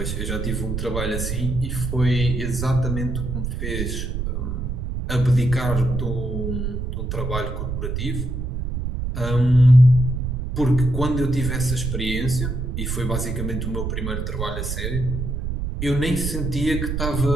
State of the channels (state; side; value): noise; right; rumble, 3 dB below the sound